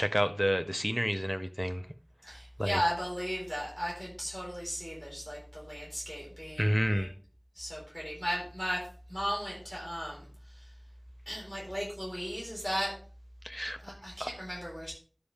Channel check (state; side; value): identical; both; correlation 1.00